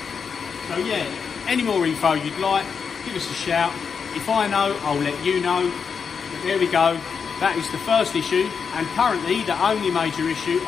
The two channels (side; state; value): right; quieter; 6.2 dB